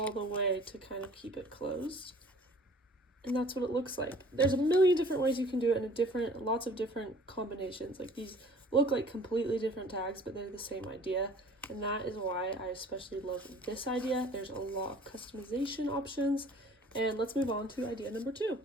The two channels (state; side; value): normal; both; correlation 0.51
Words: the way to kind of keep it closed. And that's what it looks like. There's a million different ways you can do it, and lots of different combinations. Like, these look like completely different tags, but they're the same idea. And that is why I especially love this idea. There's a lot of customization options. And let's move on to idea number 2.